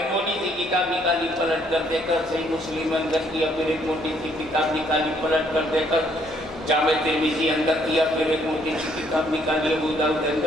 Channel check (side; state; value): both; normal; correlation 0.67